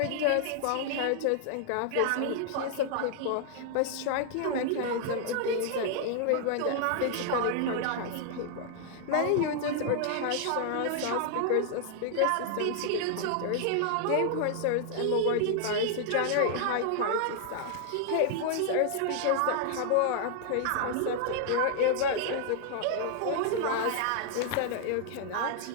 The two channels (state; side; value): different; both; correlation 0.00